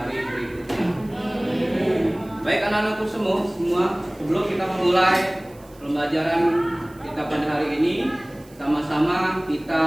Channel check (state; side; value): noise; right; hiss, 27 dB below the sound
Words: berikutnya. Baik anak-anakku semua, sebelum kita memulai pembelajaran kita pada hari ini, sama-sama